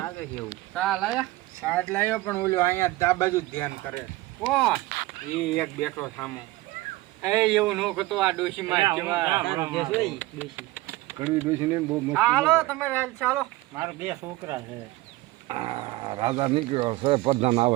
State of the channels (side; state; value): left; quieter; 19.1 dB